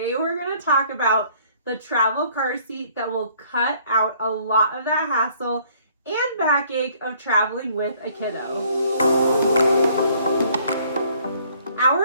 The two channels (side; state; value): both; inverted; correlation -0.61